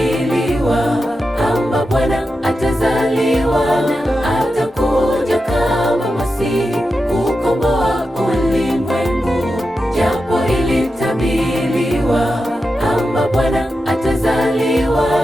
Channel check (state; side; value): normal; both; correlation 0.90